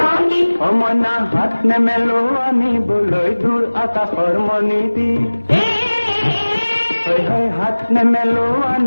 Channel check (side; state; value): both; inverted; correlation -1.00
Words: মইনা হাত নেমেলো আনিবলৈ দূৰ আকাশৰ মণিটি হাত নেমেলো